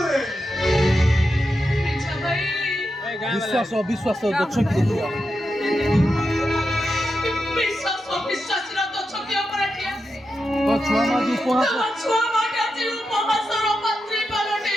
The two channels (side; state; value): both; normal; correlation 0.88